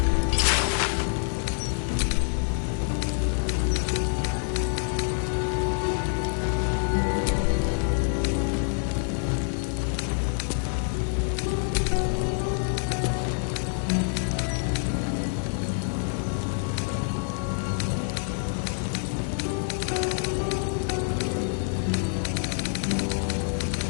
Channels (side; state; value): right; silent; 60 dB below the other